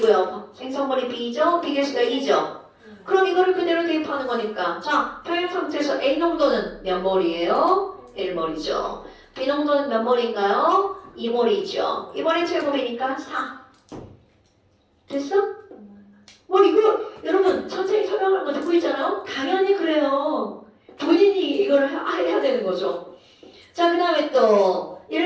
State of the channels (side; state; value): both; identical; correlation 1.00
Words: 생성물이 B죠? B 개수가 2죠? 그럼 이거를 그대로 대입하는 거니까 자, 평형 상태에서 A 농도는 몇 몰이에요? 1몰이죠. B 농도는 몇 몰인가요? 2몰이죠. 2몰의 제곱이니까 4. 됐어? 뭐 이거 여러분 선생님이 설명하는 거 듣고 있잖아요? 당연히 그래요. 본인이 이걸 해야 되는 거죠. 자, 그 다음에 또